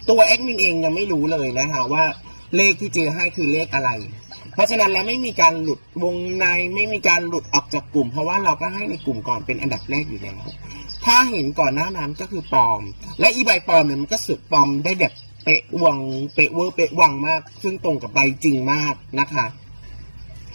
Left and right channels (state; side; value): inverted; both; correlation -1.00